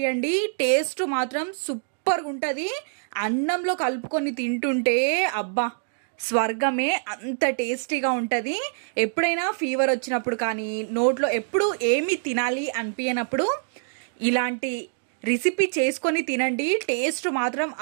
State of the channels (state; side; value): silent; left; digital silence